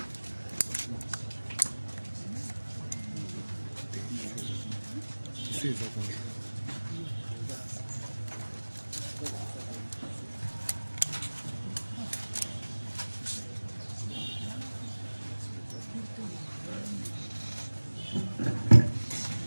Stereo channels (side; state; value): both; inverted; correlation -1.00